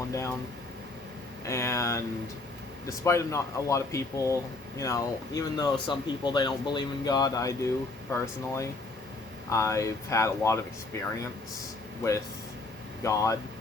down. And despite not a lot of people, you know, even though some people, they don't believe in God, I do personally. I've had a lot of experience with God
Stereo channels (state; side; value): quieter; right; 3.2 dB